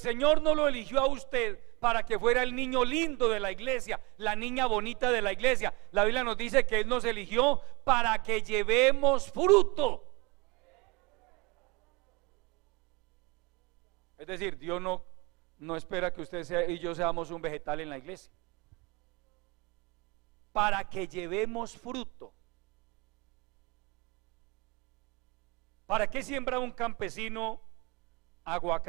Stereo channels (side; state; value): left; quieter; 26.7 dB